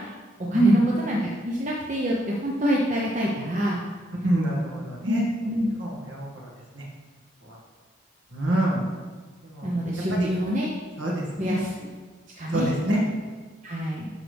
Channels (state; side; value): normal; both; correlation 0.76